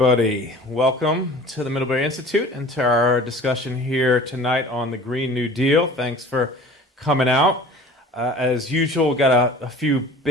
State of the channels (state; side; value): normal; both; correlation 0.44